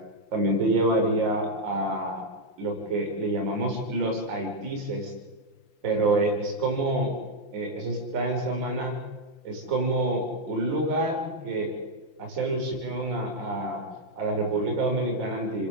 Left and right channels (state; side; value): late; right; 5.8 ms